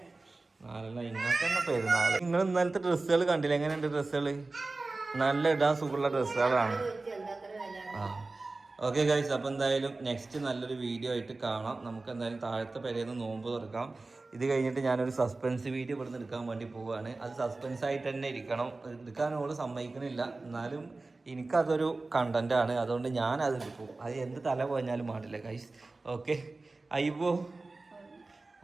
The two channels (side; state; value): left; quieter; 3.4 dB